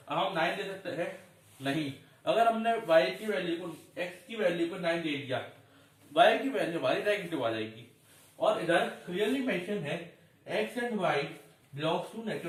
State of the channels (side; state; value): both; identical; correlation 1.00